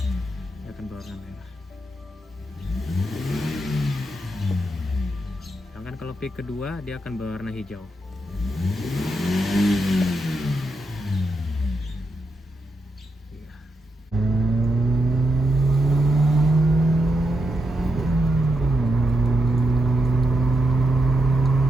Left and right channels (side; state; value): both; normal; correlation 0.84